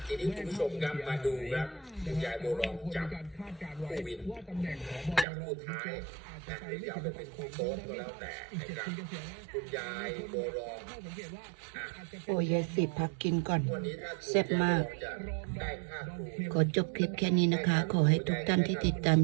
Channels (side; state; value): left; drops out; at 5.2 s